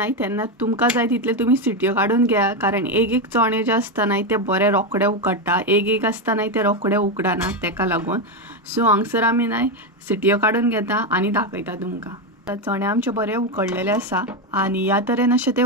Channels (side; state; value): both; normal; correlation 0.09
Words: तेन्ना तुमकां जाय तितले तुमी सिटयो काडून घ्या कारण एक चणे जे आसता न्हय ते बरे रोखडे उकडटा, एक आसता न्हय ते रोखडे उकडना तेका लागून. सो हांगसर आमी न्हय सिटयो काडून घेता आनी दाखयता तुमकां. चणे आमचे बरे उकडलेले आसा आनी ह्या तरेन अशें ते